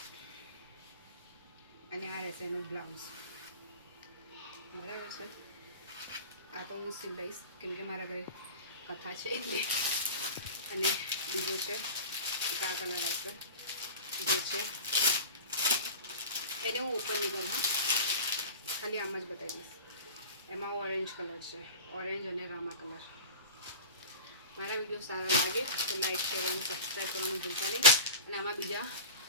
અને આ રહેશે એનું બ્લાઉઝ. બરાબર છે. આ તો હું સિલાઈશ કેમ કે મારા ઘરે કથા છે એટલે. અને બીજો છે એક આ કલર આવશે જે છે એને હું ઓપન નહીં કરું, હા ખાલી આમ જ બતાવી દઈશ. એમાં ઓરેન્જ કલર છે, ઓરેન્જ અને રામા કલર. મારા વિડીયો સારા લાગે તો લાઈક શેર અને સબસ્ક્રાઈબ કરવાનું ભૂલતા નહીં. અને આમાં બીજા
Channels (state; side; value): inverted; both; correlation -0.32